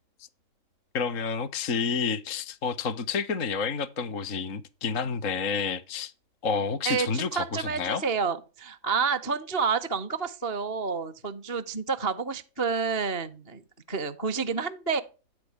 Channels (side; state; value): right; late; 3.7 ms